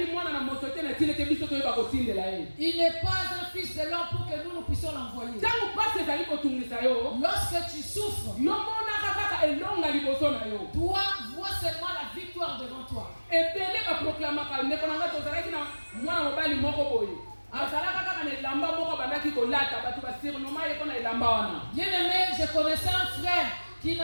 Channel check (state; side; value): inverted; both; correlation -1.00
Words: mwana na moto te na tina te biso toyeba kotindela ye. Il n'est pas un fils de l'homme pour que nous puissions l'envoyer. Ntango pasi ezali kotungisa yo. Lorsque tu souffres, Yo monaka kaka elonga liboso na yo. toi vois seulement la victoire devant toi. Ebele baproklamaka ndeko na ngai tozalaki na mwana mobali moko boye. Azalaka kaka na elamba moko bandaki kolata bato basurnoma ye mpo na elamba wana. Bien aimé, je connaissais un frère qui